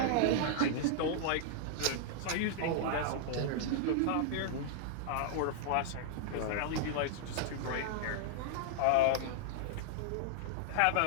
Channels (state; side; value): different; both; correlation -0.01